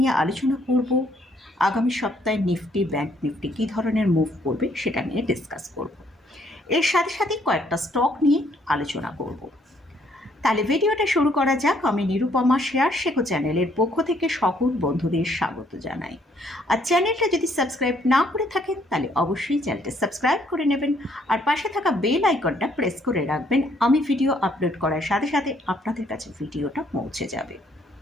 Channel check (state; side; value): normal; both; correlation 0.67